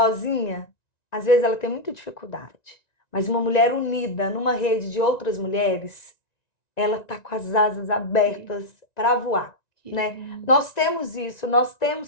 às vezes ela tem muita dificuldade. Mas uma mulher unida numa rede de outras mulheres, ela está com as asas abertas para voar, Que né? lindo. Nós temos isso, nós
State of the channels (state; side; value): late; right; 1.9 ms